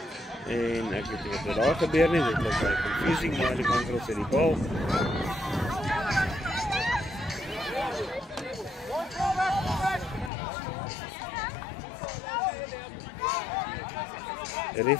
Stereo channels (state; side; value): drops out; right; at 10.3 s